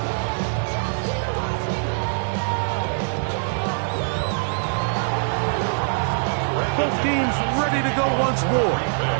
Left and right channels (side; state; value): left; silent; 63 dB below the other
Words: Both teams ready to go once more